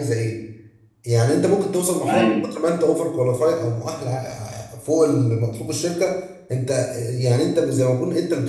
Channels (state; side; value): identical; both; correlation 1.00